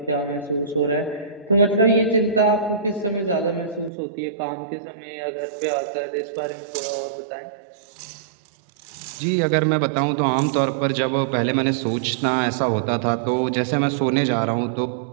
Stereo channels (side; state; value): left; drops out; at 3.9 s